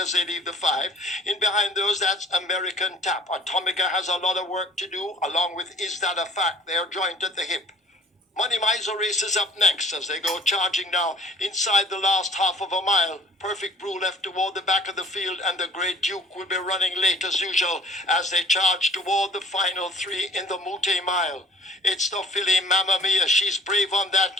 as they leave the five. In behind those, that's American Tap. Atomica has a lot of work to do, along with Is That a Fact? They're joint at the hip. Money Miser races up next as they go charging now inside the last half of a mile. Perfect Brew left toward the back of the field, and the Great Duke will be running late as usual as they charge toward the final three in the Mute Mile. It's the filly Mamma Mia. She's brave on that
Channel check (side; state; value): both; normal; correlation 0.50